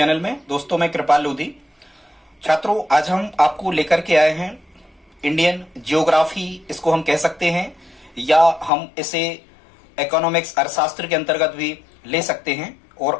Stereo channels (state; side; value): drops out; right; at 8.7 s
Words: में। दोस्तों मैं कृपाल लोधी। छात्रों, आज हम आपको लेकर के आए हैं इंडियन जियोग्राफी, इसको हम कह सकते हैं, या हम इसे इकोनॉमिक्स अर्थशास्त्र के अंतर्गत भी ले सकते हैं।